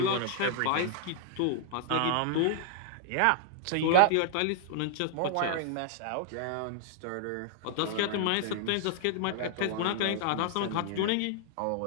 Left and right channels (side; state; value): both; different; correlation -0.01